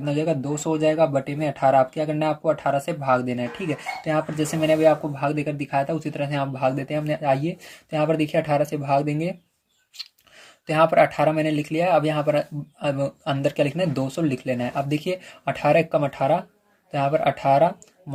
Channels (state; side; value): identical; both; correlation 1.00